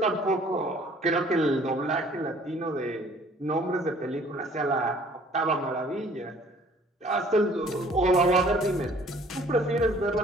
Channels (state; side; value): normal; both; correlation 0.55